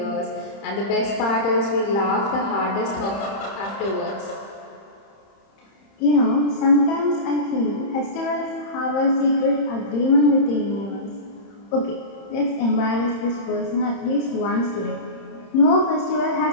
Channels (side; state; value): right; late; 30 ms